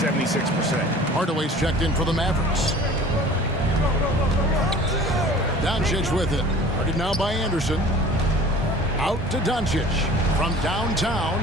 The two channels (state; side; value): normal; both; correlation 0.45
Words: Hardaway's checked in for the Mavericks. Doncic with it. Guarded now by Anderson. Out to Doncic. From downtown,